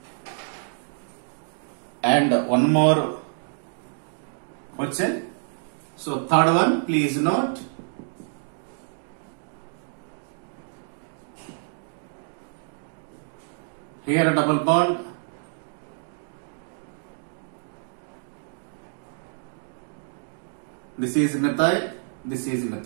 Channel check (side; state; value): left; silent; digital silence